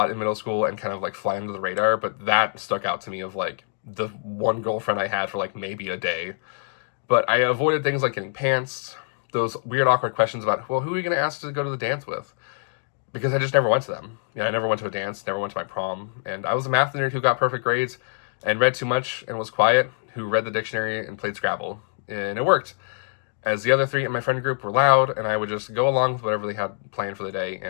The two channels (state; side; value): silent; right; digital silence